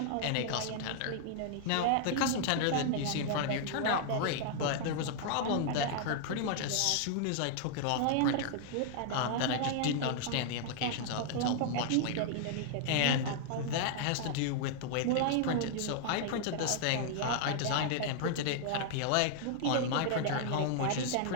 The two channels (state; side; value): different; both; correlation -0.01